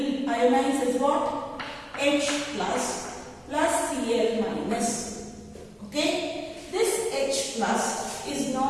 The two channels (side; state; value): both; identical; correlation 1.00